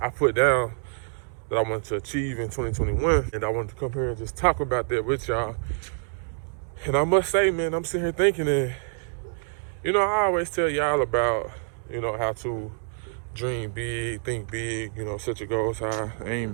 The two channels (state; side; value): silent; left; digital silence